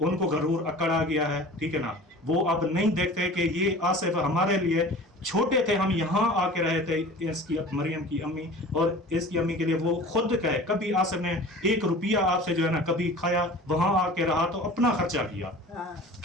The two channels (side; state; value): both; normal; correlation 0.41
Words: गरूर अकड़ आ गया है, ठीक है ना। वो अब नहीं देखते कि ये आसिफ हमारे लिए छोटे थे, हम यहाँ आके रहे थे, इसकी मरियम की अम्मी और इसकी अम्मी के लिए वो खुद कहे, कभी आसिफ ने 1 रुपया आपसे जो है ना कभी खाया, वहां आके रहा तो अपना खर्चा किया,